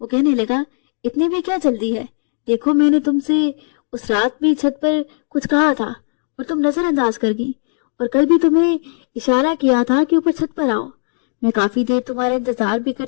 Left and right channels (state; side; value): silent; right; digital silence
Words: कहने लगा, इतनी भी क्या जल्दी है? देखो मैंने तुमसे उस रात भी छत पर कुछ कहा था और तुम नजरअंदाज कर गई, और कल भी तुम्हें इशारा किया था कि ऊपर छत पर आओ। मैं काफी देर तुम्हारा इंतजार भी